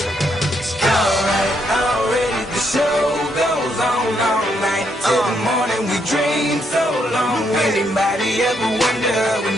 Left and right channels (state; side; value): normal; both; correlation 0.76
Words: Alright, already the show goes on all night. Till the morning we dream so long. Anybody ever wonder